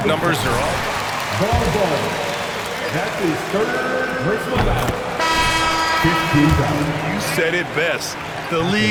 numbers are off. Ball. That's his third personal foul. 15 fouls. You said it best. The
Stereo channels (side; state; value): both; identical; correlation 1.00